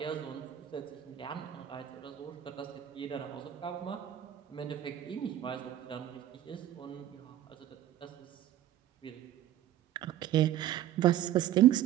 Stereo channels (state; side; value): quieter; left; 12.3 dB